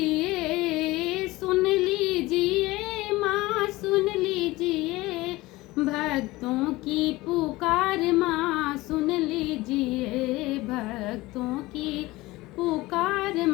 सुन लीजिए माँ, सुन लीजिए भक्तों की पुकार माँ, सुन लीजिए भक्तों की पुकार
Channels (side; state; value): right; quieter; 19.7 dB